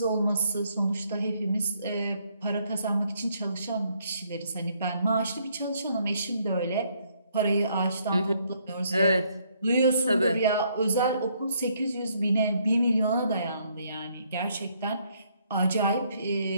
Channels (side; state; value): both; inverted; correlation -0.69